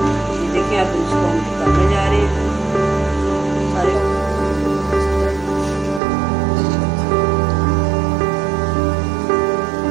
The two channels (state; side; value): drops out; left; at 6.0 s